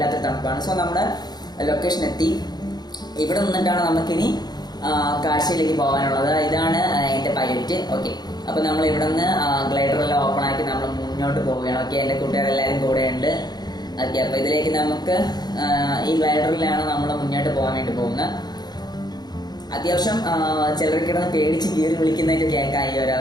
തണുപ്പാണ്. സോ നമ്മുടെ ലൊക്കേഷൻ എത്തി. ഇവിടെ നിന്നിട്ടാണ് നമുക്കിനി കാഴ്ചയിലേക്ക് പോകാനുള്ളത്. ഇതാണ് എൻ്റെ പൈലറ്റ്. ഓക്കെ, അപ്പോൾ നമ്മൾ ഇവിടെ നിന്ന് ഗ്ലൈഡറെല്ലാം ഓപ്പൺ ആക്കി നമ്മൾ മുന്നോട്ട് പോവുകയാണ്. ഓക്കെ, എൻ്റെ കൂട്ടുകാരെല്ലാവരും കൂടെ ഉണ്ട്. ഓക്കെ, അപ്പോൾ ഇതിലേക്ക് നമുക്ക് ഈ ഗ്ലൈഡറിലാണ് നമ്മൾ മുന്നോട്ട് പോകാൻ വേണ്ടി പോകുന്നത്. അത്യാവശ്യം ചിലർക്കിടന്ന് പേടിച്ച് കീറി വിളിക്കുന്നതൊക്കെ കേൾക്കാം ഈ ഒരു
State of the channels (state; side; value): late; right; 0.20 ms